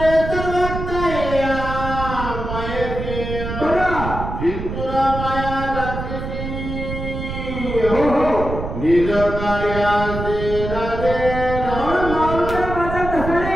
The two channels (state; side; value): noise; right; rumble, 6 dB below the sound